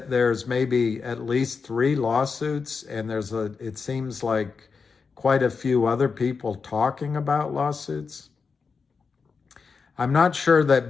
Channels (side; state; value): right; quieter; 5.2 dB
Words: there's maybe at least 3 lawsuits, and it seems like quite a few other people talking about lawsuits. I'm not sure